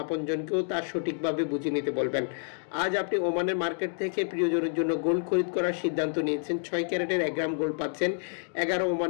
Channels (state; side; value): silent; right; 56 dB below the other